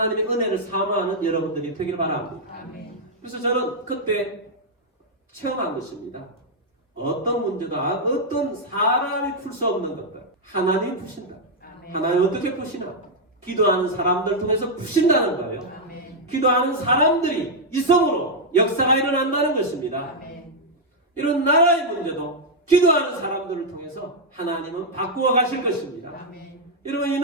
은혜를 사모하는 여러분들이 되길 바랍니다. 그래서 저는 그때 체험한 것입니다. 어떤 문제도 어떤 사람이 풀 수 없는 것들 하나님이 푸신다. 하나님 어떻게 푸시나? 기도하는 사람들 통해서 푸신다는 거예요. 기도하는 사람들이 이성으로 역사가 일어난다는 것입니다. 이런 나라의 문제도 기도하는 사람들을 통해서 하나님은 바꾸어 가실 것입니다. 여러분 이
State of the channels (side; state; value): both; normal; correlation -0.03